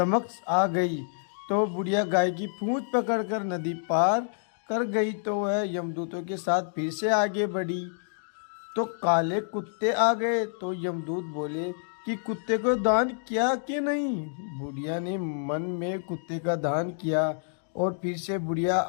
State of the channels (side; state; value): right; silent; digital silence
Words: आ गई। तो बुढ़िया गाय की पूंछ पकड़कर नदी पार कर गई तो वह यमदूतों के साथ फिर से आगे बढ़ी। तो काले कुत्ते आ गए तो यमदूत बोले कि कुत्ते को दान किया कि नहीं? बुढ़िया ने मन में कुत्ते का दान किया और फिर से बुढ़िया